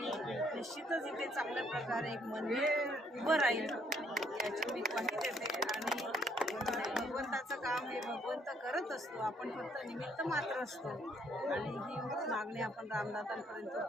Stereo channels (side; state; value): both; normal; correlation 0.67